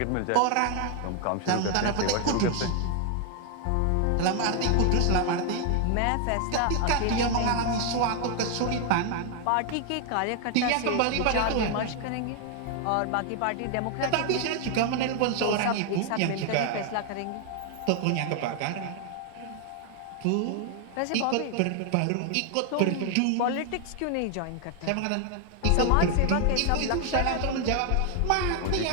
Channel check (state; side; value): different; both; correlation 0.00